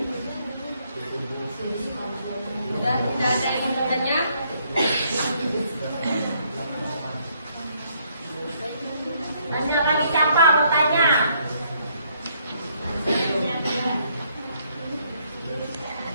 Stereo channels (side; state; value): both; inverted; correlation -0.69